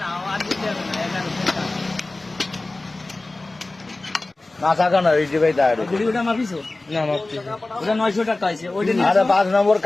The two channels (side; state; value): right; quieter; 3.0 dB